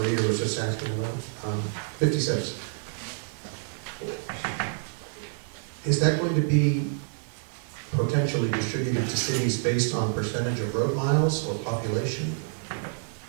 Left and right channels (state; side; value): silent; left; 59 dB below the other